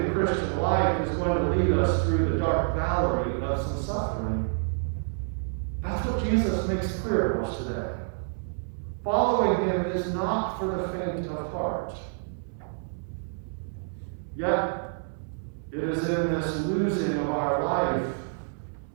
the Christian life is going to lead us through the dark valley of some suffering. That's what Jesus makes clear to us today. Following him is not for the faint of heart. Yet, it is in this losing of our life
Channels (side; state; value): left; silent; 59 dB below the other